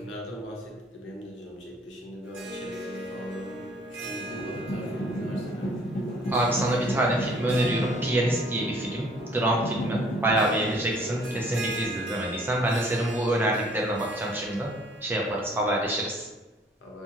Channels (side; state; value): both; normal; correlation 0.58